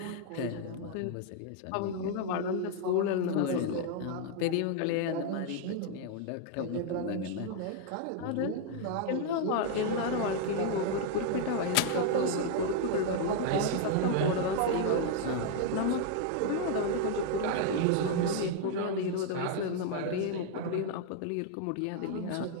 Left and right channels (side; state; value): both; different; correlation 0.00